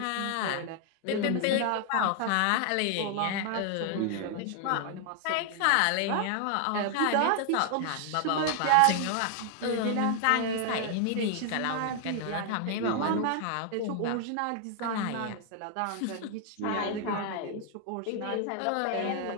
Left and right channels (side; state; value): both; different; correlation 0.00